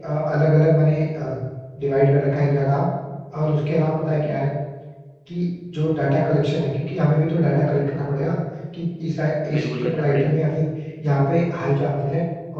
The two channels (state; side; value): identical; both; correlation 1.00